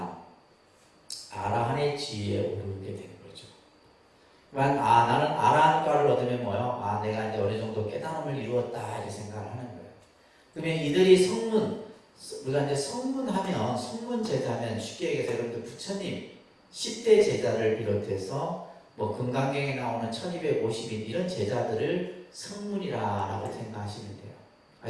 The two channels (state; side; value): identical; both; correlation 1.00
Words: 아라한의 지위에 오르게 되는 거죠. 그러니까 나는 아라한과를 얻으면 뭐요? 내가 이제 어느 정도 깨달음을 이루었다 이렇게 생각을 하는 거예요. 그러면 이들이 우리가 이제 성문하면 성문제자면 쉽게 얘기해서 여러분들 부처님 10대 제자를 비롯해서 뭐 금강경에 나오는 1250인 이런 제자들을 성문이라고 생각하시면 돼요.